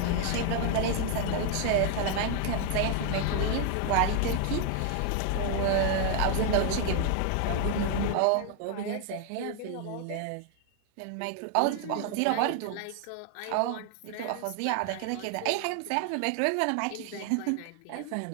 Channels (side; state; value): both; different; correlation 0.00